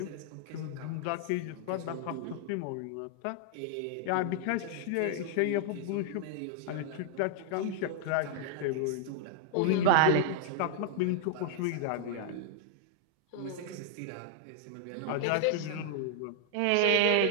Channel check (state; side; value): different; both; correlation -0.01